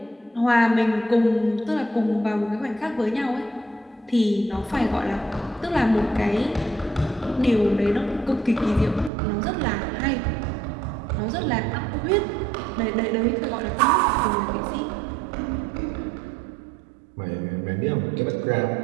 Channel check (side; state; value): left; drops out; at 9.1 s